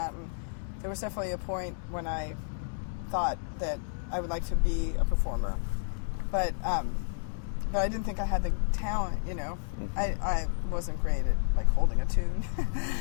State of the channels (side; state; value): right; silent; digital silence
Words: and there was definitely a point when I thought that I would like to be a performer. But I didn't think I had the talent, Mm-hmm. I wasn't great at holding a tune.